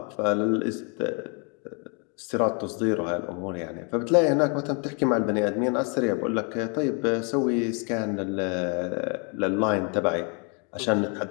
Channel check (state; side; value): quieter; right; 35.7 dB